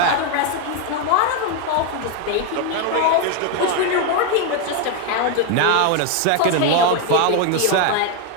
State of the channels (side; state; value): both; different; correlation 0.01